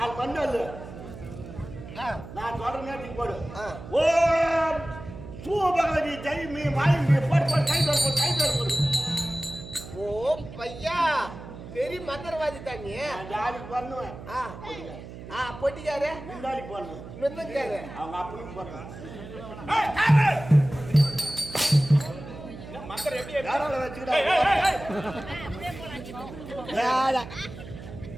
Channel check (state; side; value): noise; right; hum, 13 dB below the sound